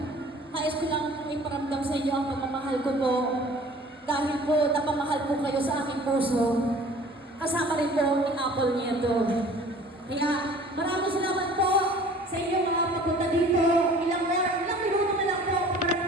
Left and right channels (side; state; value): both; normal; correlation 0.48